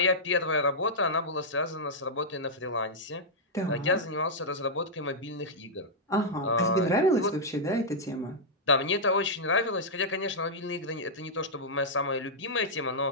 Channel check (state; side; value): normal; both; correlation -0.08